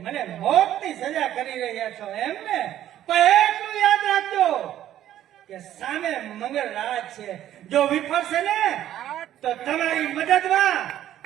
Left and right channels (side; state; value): left; quieter; 12.1 dB